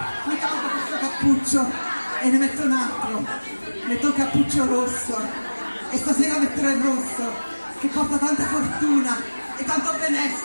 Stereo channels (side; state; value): both; inverted; correlation -1.00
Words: mi tolgo questo cappuccio e ne metto un altro, metto un cappuccio rosso e stasera metterò il rosso che porta tanta fortuna e tanto